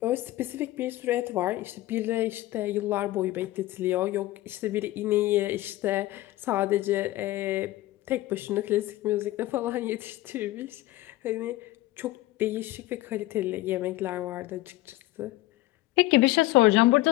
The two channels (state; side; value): quieter; right; 17.2 dB